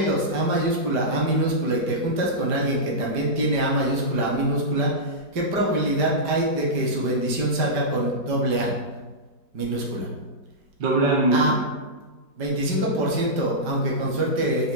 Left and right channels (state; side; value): late; left; 5.0 ms